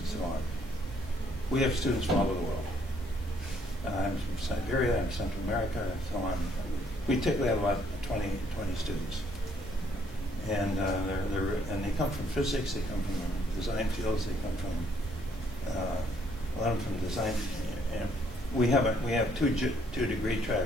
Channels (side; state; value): both; normal; correlation 0.68